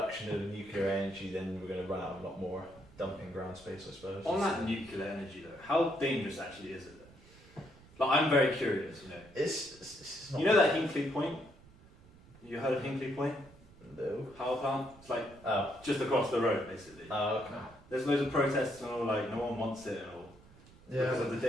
of nuclear energy, then we're going to run out of a lot more dumping ground space, I suppose. On that nuclear energy though, how dangerous actually is it though? Like I'm very curious, It's not. You know that Hinkley Point? You heard of Hinkley Point? No. Power plant? It's like Oh. just across the road basically. Oh, okay. There's loads of protests and all, like no one wants it and all. Yeah. Because of the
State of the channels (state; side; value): noise; right; rumble, 23 dB below the sound